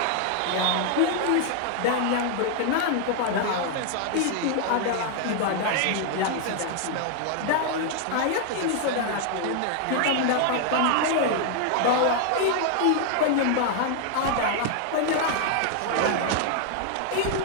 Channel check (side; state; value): both; different; correlation 0.00